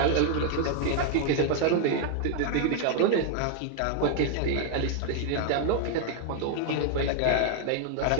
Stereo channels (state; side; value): different; both; correlation 0.00